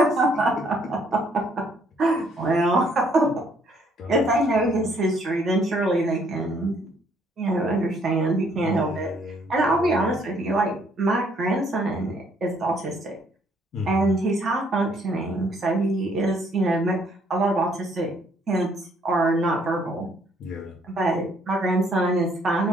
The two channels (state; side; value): normal; both; correlation 0.66